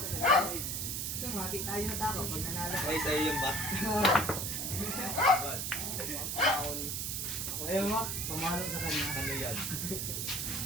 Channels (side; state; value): right; noise; hiss, 2 dB below the sound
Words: Kasi mati tayo na tako pag nanalo. Ay, sa'yo yung bat. Foul. Ayaw mo, pamahalo sa kanya. Ano yan?